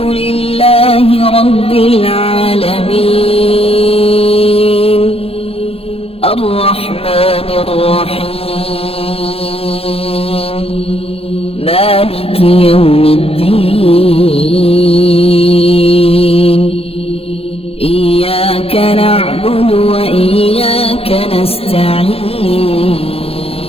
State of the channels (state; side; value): late; right; 0.28 ms